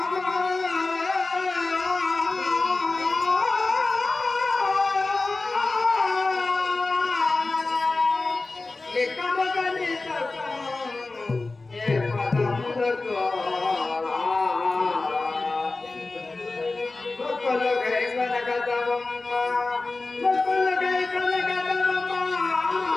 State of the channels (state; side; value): quieter; right; 3.4 dB